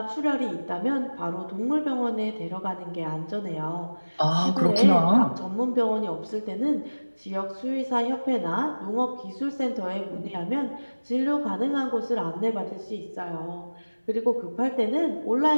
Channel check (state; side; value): inverted; both; correlation -1.00